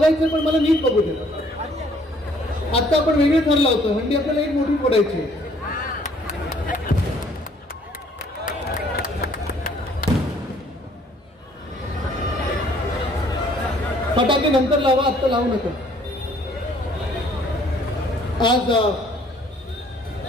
पण मला नीट बघू दे. आता आपण वेगळे ठरला होतं. हंडी आपल्याला एक मोठी फोडायची. फटाके नंतर लावा, आत्ता लावू नका. आज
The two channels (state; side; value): normal; both; correlation 0.61